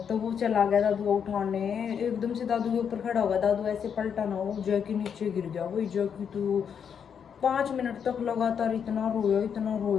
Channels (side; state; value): right; quieter; 7.5 dB